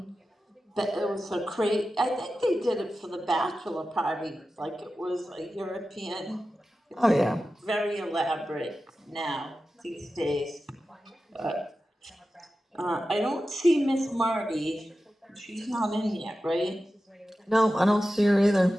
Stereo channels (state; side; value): normal; both; correlation 0.93